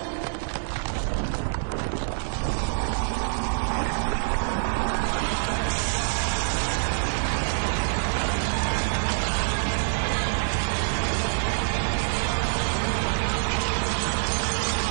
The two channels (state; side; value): silent; left; digital silence